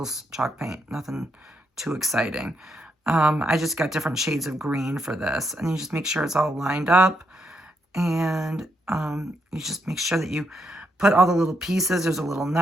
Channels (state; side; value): normal; both; correlation 0.79